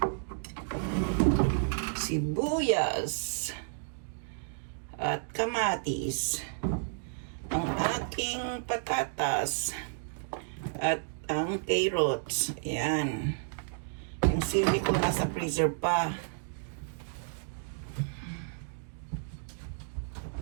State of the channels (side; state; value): left; silent; digital silence